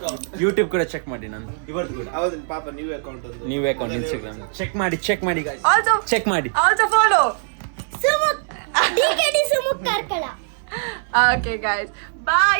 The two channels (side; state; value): left; silent; digital silence